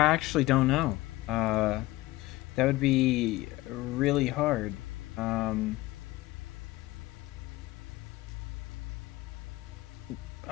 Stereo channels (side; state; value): right; quieter; 18.8 dB